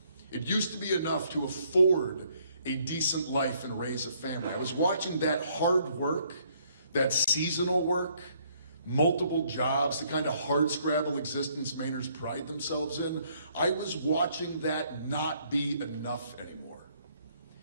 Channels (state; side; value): inverted; both; correlation -0.66